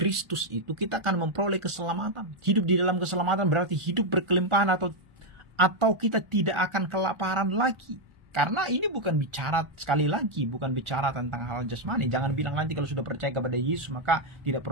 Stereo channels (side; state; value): left; late; 1.4 ms